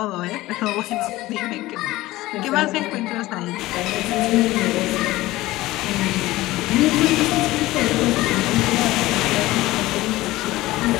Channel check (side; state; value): right; quieter; 17.8 dB